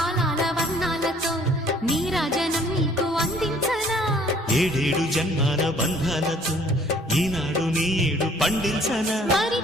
వర్ణాలతో నీరాజనం నీకు అందించనా, ఏడేడు జన్మాల బంధాలతో ఈనాడు నీ ఏడు పండించనా. మరి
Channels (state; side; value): normal; both; correlation 0.57